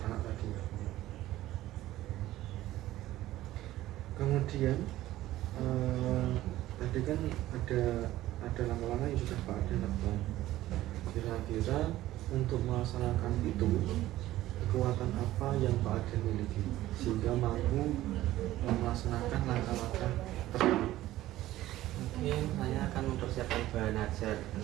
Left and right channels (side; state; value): left; quieter; 15.2 dB